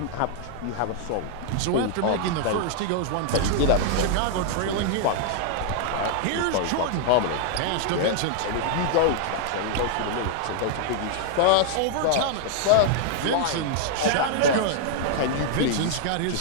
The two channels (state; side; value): different; both; correlation -0.01